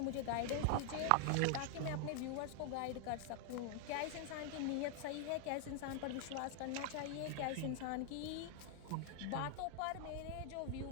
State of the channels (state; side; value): different; both; correlation 0.00